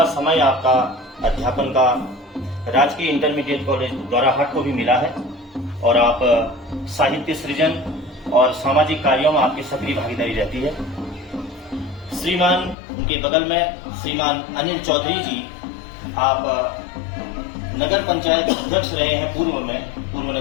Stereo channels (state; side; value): drops out; right; at 12.8 s